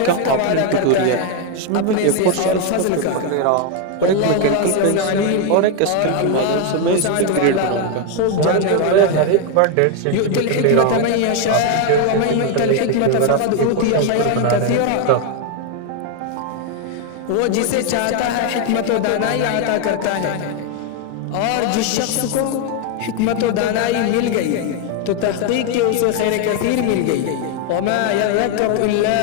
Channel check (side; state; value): both; different; correlation 0.01